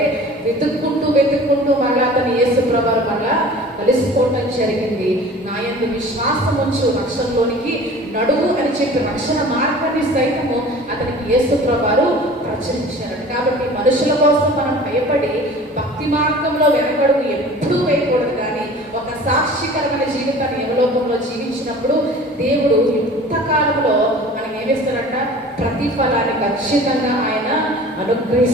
వెతుక్కుంటూ మళ్ళా అతను యేసు ప్రభువు మళ్ళా కలిసిపోవటం జరిగింది. నా యందు విశ్వాసం ఉంచు రక్షణలోనికి నడువు అని చెప్పి రక్షణ మార్గాన్ని సైతము అతనికి యేసు ప్రభువు ప్రచురించారు. కాబట్టి మనుషుల కోసం మనం భయపడి భక్తి మార్గంలో వెనకడుగు ఎప్పుడూ వేయకూడదు. కానీ ఒక సాక్షికరమైన జీవితాన్ని యమలోకంలో జీవించినప్పుడు దేవుడు యుక్తకాలంలో మనం ఏమిస్తారంట, ప్రతిఫలాన్ని ఖచ్చితంగా ఆయన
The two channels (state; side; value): normal; both; correlation 0.43